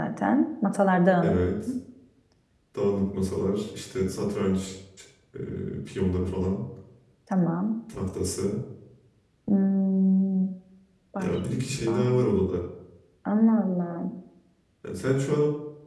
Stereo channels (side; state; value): both; identical; correlation 1.00